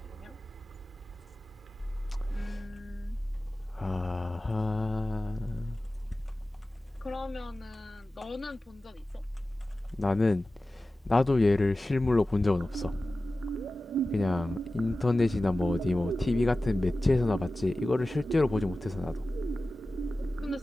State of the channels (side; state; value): both; normal; correlation 0.95